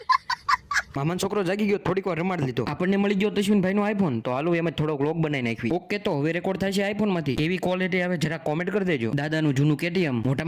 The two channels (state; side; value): identical; both; correlation 1.00